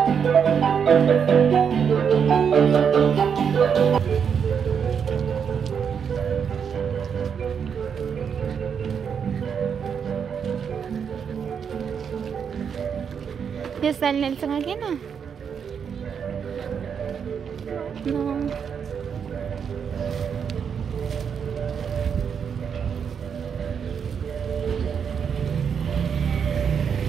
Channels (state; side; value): quieter; left; 7.1 dB